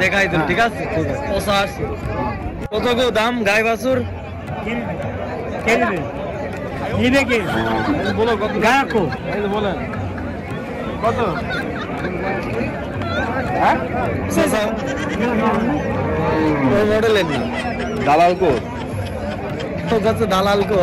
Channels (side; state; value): both; identical; correlation 1.00